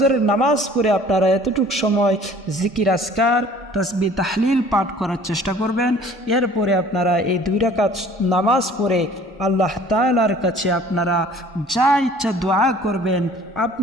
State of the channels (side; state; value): both; normal; correlation 0.51